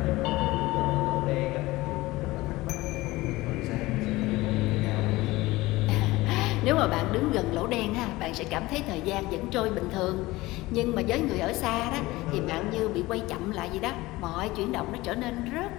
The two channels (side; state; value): right; quieter; 19.5 dB